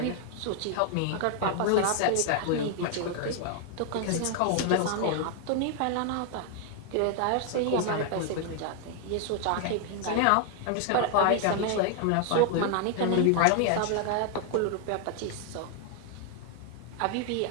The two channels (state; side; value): different; both; correlation 0.00